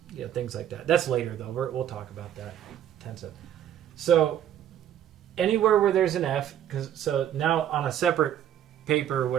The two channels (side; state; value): left; quieter; 10.6 dB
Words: things like that. That's later though. We'll talk about that intensive. So anywhere where there's an F, so now on a separate paper or